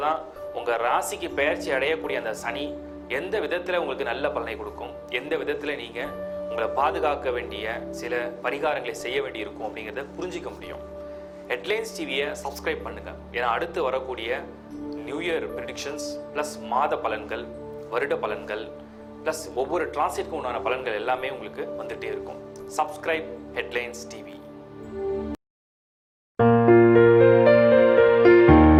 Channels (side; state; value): both; identical; correlation 1.00